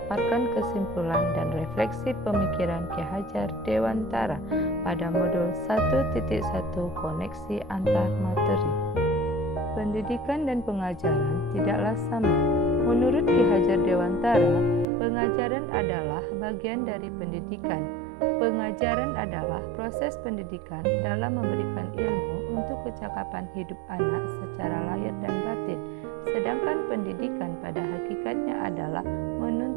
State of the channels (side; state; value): left; drops out; at 14.9 s